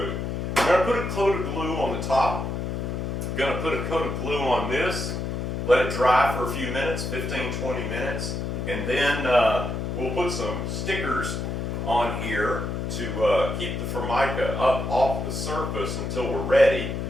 I'm going to put a coat of glue on the top. I'm going to put a coat of glue on this, let it dry for a few minutes, 15-20 minutes, and then we'll put some stickers on here to keep the Formica up off the surface until we're ready.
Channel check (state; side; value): noise; left; hum, 3 dB below the sound